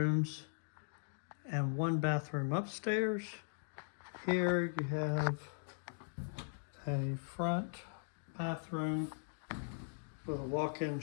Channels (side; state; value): right; silent; digital silence